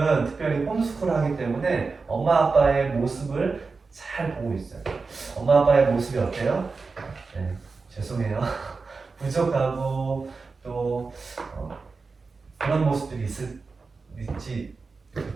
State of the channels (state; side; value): quieter; left; 4.4 dB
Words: 특별히 홈스쿨 하기 때문에 엄마 아빠의 모습을 잘 보고 있어요. 엄마 아빠의 모습이 어때요? 네, 죄송해요. 부족하고 또 그런 모습들이 있지,